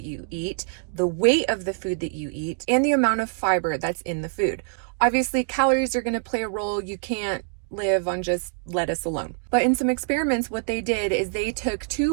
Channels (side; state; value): left; silent; digital silence